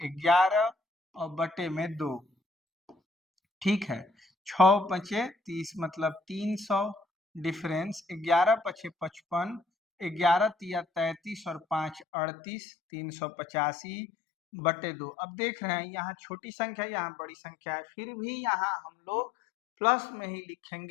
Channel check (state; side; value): drops out; right; at 12.1 s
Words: 11 और बटे में 2। ठीक है, 6 पचे 30 मतलब 300, डिफरेंस 11 पचे 55, 11 तिया 33 और 5 38, 385 बटे 2। अब देख रहे हैं यहाँ छोटी संख्या यहाँ बड़ी संख्या है, फिर भी यहाँ हम लोग प्लस में ही